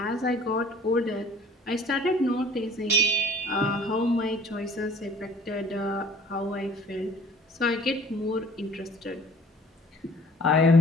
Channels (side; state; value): both; normal; correlation 0.51